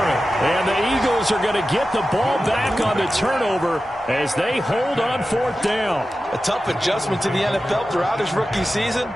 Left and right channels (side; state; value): both; normal; correlation 0.93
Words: And the Eagles are going to get the ball back on the turnover as they hold on 4th down. A tough adjustment to the NFL throughout his rookie season,